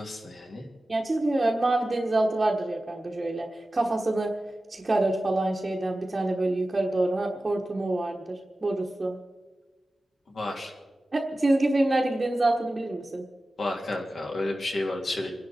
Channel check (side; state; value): both; normal; correlation 0.95